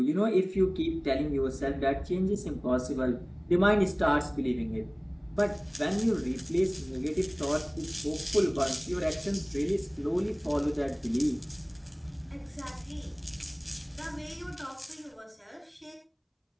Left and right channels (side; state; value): both; identical; correlation 1.00